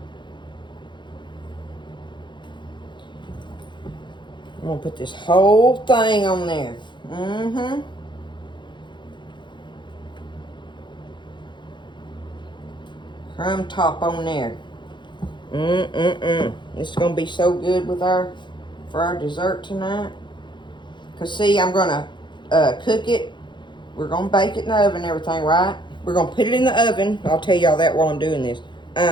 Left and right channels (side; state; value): right; late; 0.23 ms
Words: I'm gonna put this whole thing on there. Crumb top on there. This is gonna be so good with for our dessert tonight. Cause see, I'm gonna cook it. We're gonna bake it in the oven and everything, right? We're gonna put it in the oven. I'll tell y'all that while I'm doing this.